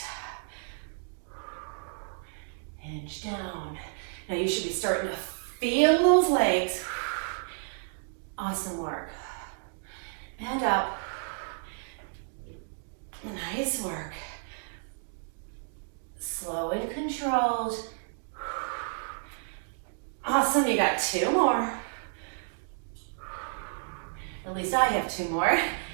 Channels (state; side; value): silent; left; digital silence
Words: Hinge down. Now you should be starting to feel those legs. Awesome work. And up. Nice work. Slow and controlled. Awesome, you got 2 more. At least I have 2 more.